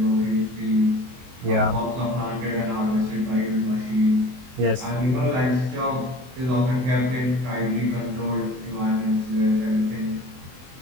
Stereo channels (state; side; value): late; left; 24 ms